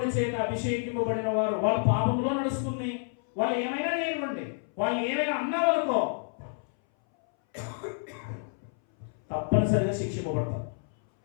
చేత అభిషేకింపబడిన వారు వాళ్ళ పాపంలో నడుస్తుంది. వాళ్ళు ఏమైనా లేనివ్వండి, వాళ్ళు ఏమైనా అన్నా వాళ్ళకో తప్పనిసరిగా శిక్షింపబడతారు.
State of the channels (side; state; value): right; silent; 59 dB below the other